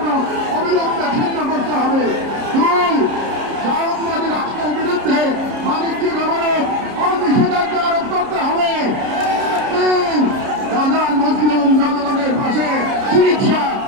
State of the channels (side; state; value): left; late; 30 ms